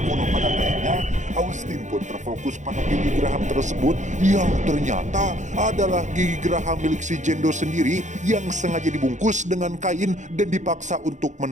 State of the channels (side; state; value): left; late; 0.35 ms